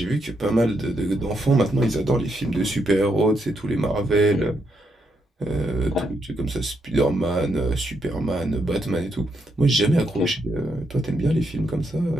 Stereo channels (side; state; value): both; normal; correlation 0.79